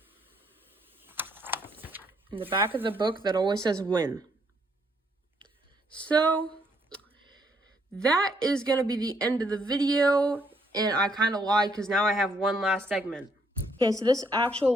in the back of the book that always says win. So, that is going to be the end of the video, and I kind of lied because now I have one last segment. Okay, so this actual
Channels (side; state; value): both; normal; correlation 0.71